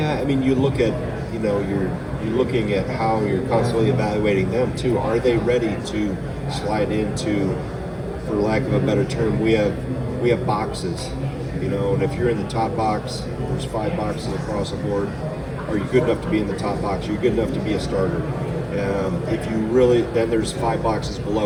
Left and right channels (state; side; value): identical; both; correlation 1.00